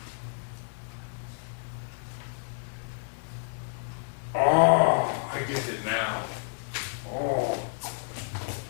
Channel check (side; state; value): right; silent; digital silence